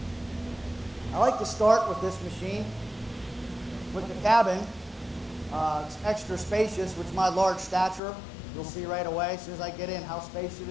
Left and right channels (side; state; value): right; drops out; at 8.0 s